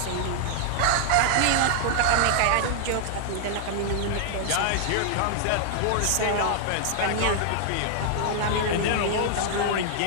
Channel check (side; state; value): both; different; correlation 0.00